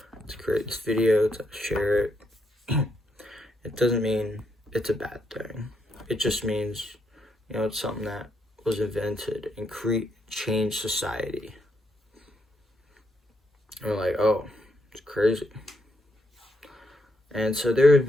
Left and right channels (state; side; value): normal; both; correlation 0.78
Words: to create this video, to share it. It doesn't mean it's a bad thing. It just means, it's something that was invented and changed society. And we're like, oh, it's crazy. And so there have